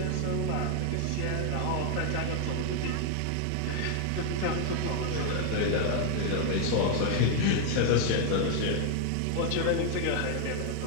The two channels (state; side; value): different; both; correlation 0.00